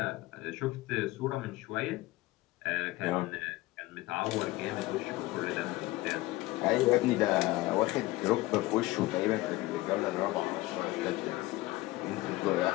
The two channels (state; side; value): quieter; right; 18.7 dB